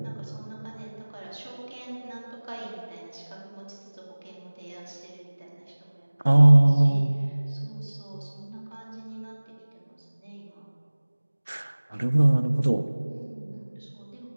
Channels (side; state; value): both; inverted; correlation -1.00